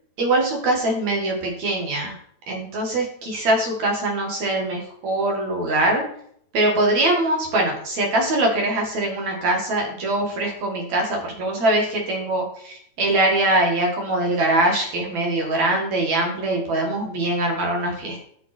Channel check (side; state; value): left; late; 8.9 ms